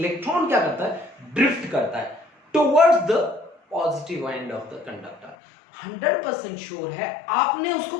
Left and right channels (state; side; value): drops out; right; at 5.4 s